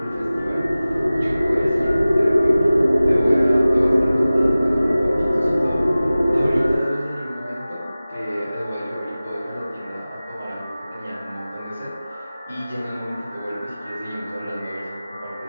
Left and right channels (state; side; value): inverted; both; correlation -0.97